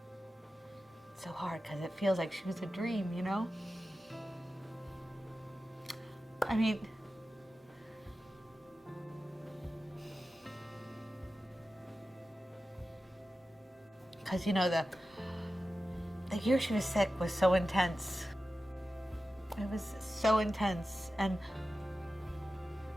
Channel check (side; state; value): both; normal; correlation 0.94